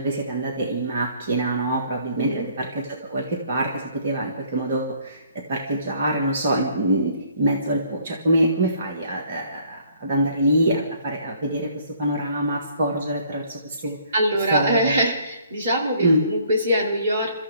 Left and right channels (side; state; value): both; inverted; correlation -0.61